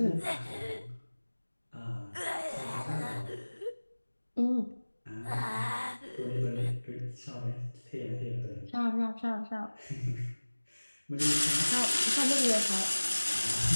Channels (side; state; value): both; inverted; correlation -1.00